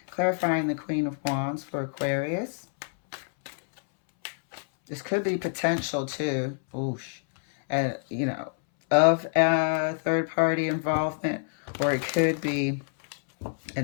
Clarifying the Queen of Wands for Aquarius. This could be potential too, of third party involvement, or it could be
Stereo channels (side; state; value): right; silent; 60 dB below the other